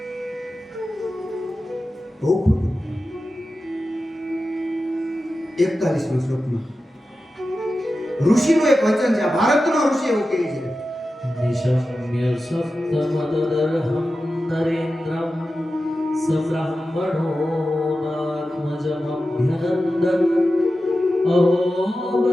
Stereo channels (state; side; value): normal; both; correlation 0.93